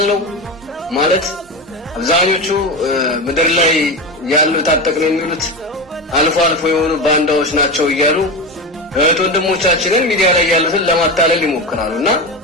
ማለት አብዛኞቹ ምድር ላይ ያሉ ታጠቅነው የሚሉት አልፎ አልፎ የሆኑ ባንዳዎች ናቸው እያሉ ወንድሞቻችንን ሚዲያ ላይ ያሉትን ለማታለል ይሞክራሉና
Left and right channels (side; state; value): both; normal; correlation 0.20